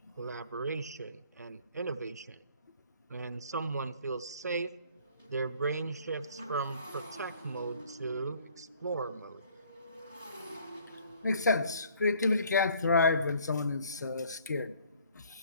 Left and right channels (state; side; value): inverted; both; correlation -0.58